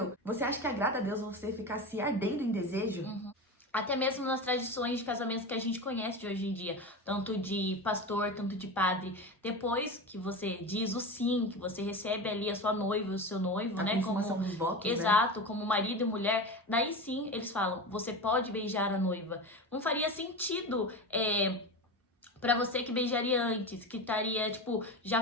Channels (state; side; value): normal; both; correlation 0.25